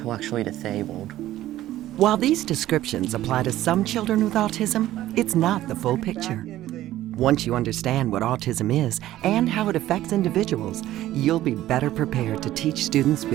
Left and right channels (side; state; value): left; quieter; 14.3 dB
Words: disabled. While these descriptions apply to some children with autism, it's not the full picture. Once you understand what autism is and how it affects individuals, you'll be better prepared to teach students